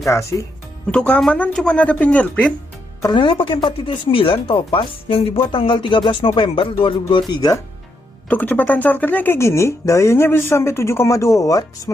Untuk keamanan cuma ada fingerprint. Kernelnya pakai 4.9 Topaz yang dibuat tanggal 13 November 2023. Untuk kecepatan chargernya kayak gini, dayanya bisa sampai 7,2 watt,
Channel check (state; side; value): normal; both; correlation 0.79